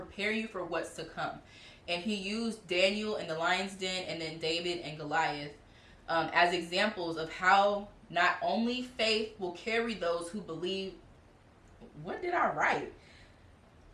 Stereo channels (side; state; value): both; identical; correlation 1.00